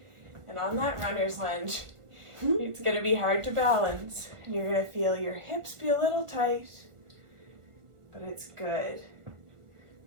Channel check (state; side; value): late; left; 1.4 ms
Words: And on that runner's lunge, it's going to be hard to balance. And you're going to feel your hips be a little tight, but it's good.